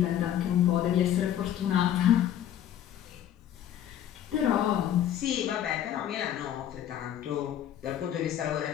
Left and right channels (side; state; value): right; quieter; 10.7 dB